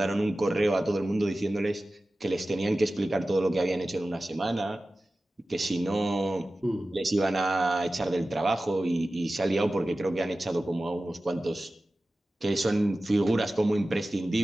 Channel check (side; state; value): both; normal; correlation 0.95